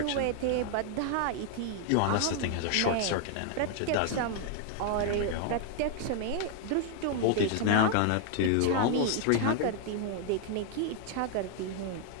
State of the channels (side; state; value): both; different; correlation 0.00